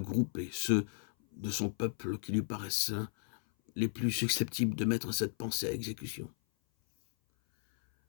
ceux de son peuple qui lui paraissent les plus susceptibles de mettre cette pensée à exécution.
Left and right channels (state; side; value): silent; right; 55 dB below the other